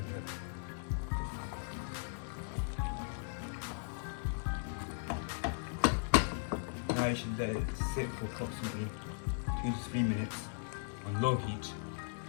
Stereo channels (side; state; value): right; silent; digital silence